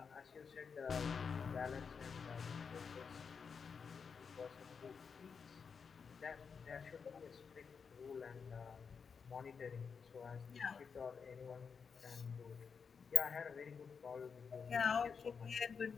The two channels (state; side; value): quieter; right; 5.9 dB